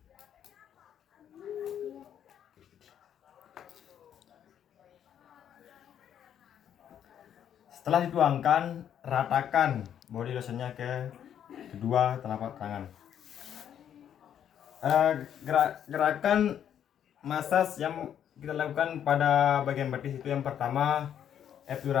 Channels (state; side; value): quieter; right; 9.5 dB